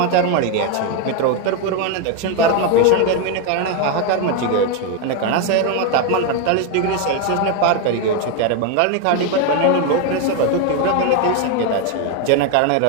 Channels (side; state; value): both; different; correlation 0.02